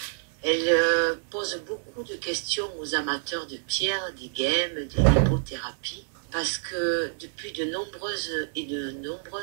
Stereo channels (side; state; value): left; silent; digital silence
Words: Elle pose beaucoup de questions aux amateurs de pierres, des gemmes, des lithothérapies, parce que depuis de